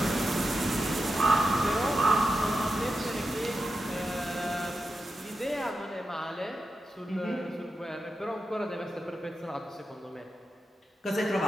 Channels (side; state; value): both; normal; correlation 0.89